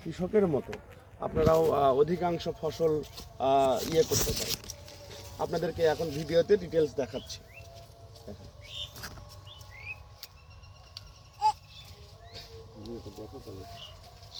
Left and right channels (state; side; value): identical; both; correlation 1.00